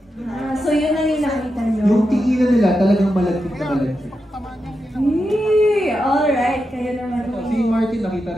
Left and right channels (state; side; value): normal; both; correlation 0.88